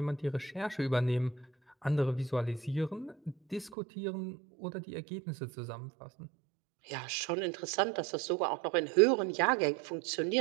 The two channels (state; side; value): drops out; left; at 3.8 s